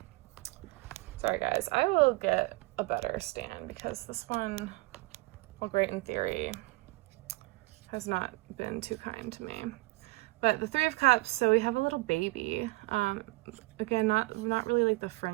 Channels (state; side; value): quieter; left; 22.5 dB